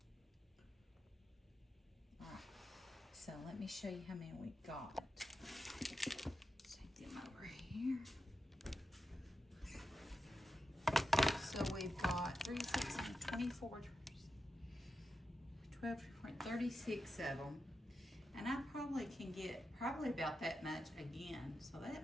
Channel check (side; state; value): both; normal; correlation 0.88